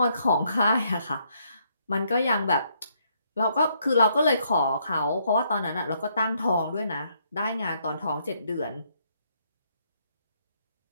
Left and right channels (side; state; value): both; inverted; correlation -0.72